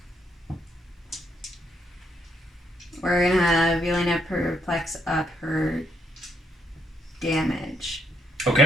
We're gonna have Yelena perplex up her damage.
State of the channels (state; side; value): normal; both; correlation 0.74